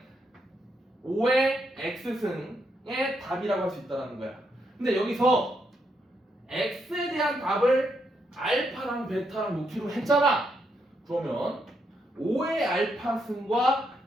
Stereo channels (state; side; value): normal; both; correlation 0.79